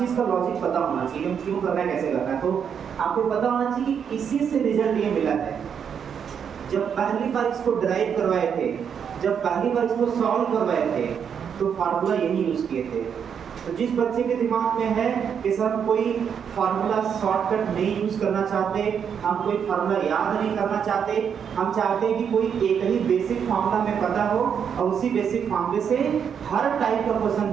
का लॉजिक पता होना चाहिए, हम क्यों कर रहे हैं, कैसे कर रहे हैं। तो आपको पता होना चाहिए कि इसी से रिजल्ट ये मिला है। जब पहली बार इसको ड्राइव करवाए थे, जब पहली बार इसको सॉल्व करवाए थे, तो फार्मूला यही यूज किए थे। तो जिस बच्चे के दिमाग में है कि सर कोई फार्मूला शॉर्टकट नहीं यूज करना चाहते, हम कोई फार्मूला याद नहीं करना चाहते, हम चाहते हैं कि कोई एक ही बेसिक फार्मूला में पता हो और उसी बेसिक फार्मूले से हर टाइप का क्वेश्चन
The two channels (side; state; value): left; quieter; 7.5 dB